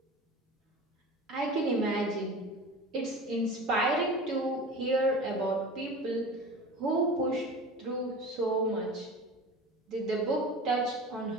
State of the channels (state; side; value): normal; both; correlation 0.35